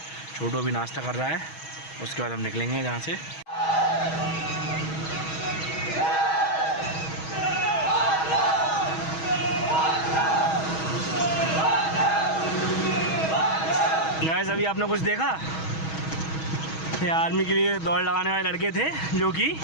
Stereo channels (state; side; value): late; right; 6.3 ms